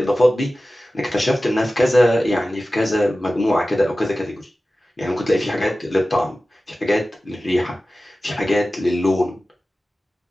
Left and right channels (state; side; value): normal; both; correlation 0.95